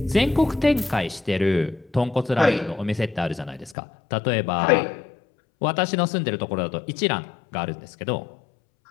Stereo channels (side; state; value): right; drops out; at 3.8 s